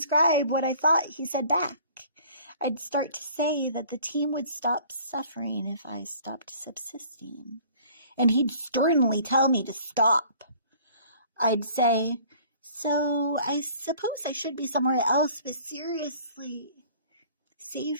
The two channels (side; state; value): both; inverted; correlation -0.52